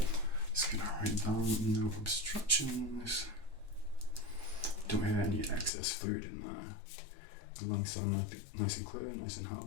Just gonna write down no obstructions. Don't hear any excess fluid in there. The lungs sound nice and clear, nice and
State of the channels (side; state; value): right; drops out; at 5.7 s